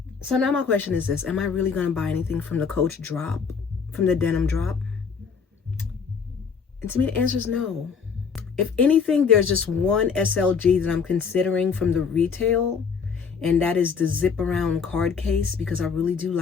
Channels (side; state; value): right; quieter; 5.9 dB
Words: So now my question is this: am I really gonna buy anything from the Coach drop, from the denim drop? And to me, the answer is no. If anything, there's just one SLG that I'm considering from the retail, and that is the zip around card case, because I really do